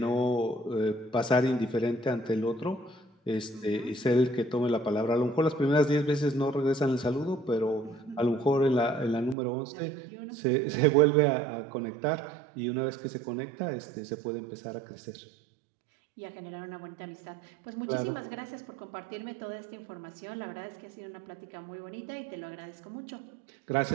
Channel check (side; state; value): left; drops out; at 9.3 s